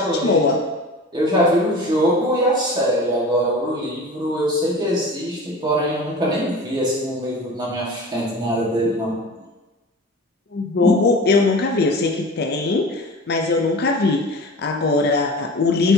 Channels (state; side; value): normal; both; correlation 0.36